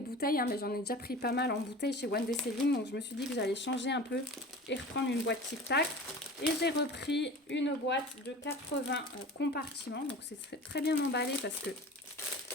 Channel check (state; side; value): normal; both; correlation 0.37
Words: hein, mais j'en ai déjà pris pas mal en bouteilles chez One Day Saving. Donc je me suis dit que j'allais changer un peu et reprendre une boîte Tic Tac. Et j'ai repris une boîte de 80 compartiments. Donc c'est très bien emballé parce que